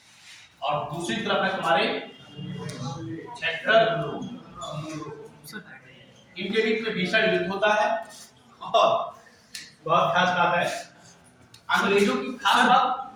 और दूसरी तरफ है तुम्हारे छक्कर। इनके बीच में भीषण युद्ध होता है। और बहुत खास बात है, अंग्रेजों की खास बात,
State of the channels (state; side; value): identical; both; correlation 1.00